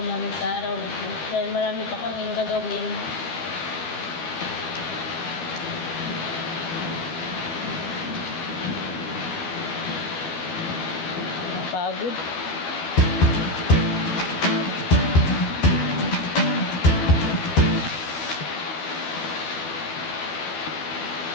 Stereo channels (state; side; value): late; right; 12 ms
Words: namin sa araw na ito dahil marami pa kaming gagawin. Pagod.